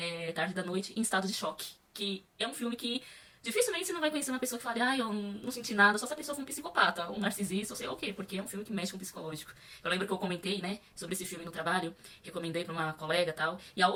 tarde da noite, em estado de choque. Que é um filme que dificilmente você não vai conhecer uma pessoa que fale, eu não senti nada, só se a pessoa for um psicopata, um narcisista, ou sei lá o quê, porque é um filme que mexe com o psicológico. Eu lembro que eu comentei, né, sobre esse filme no trabalho, recomendei pra uma colega e tal, e a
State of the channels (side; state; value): both; identical; correlation 1.00